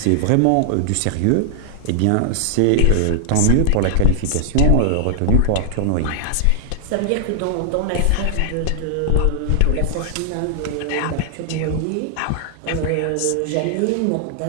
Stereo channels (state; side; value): different; both; correlation -0.01